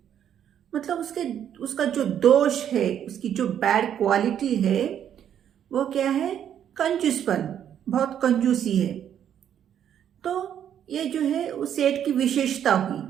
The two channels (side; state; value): left; quieter; 9.6 dB